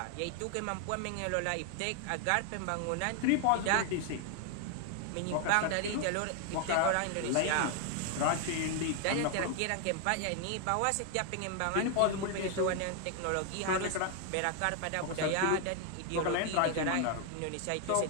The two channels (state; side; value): different; both; correlation 0.00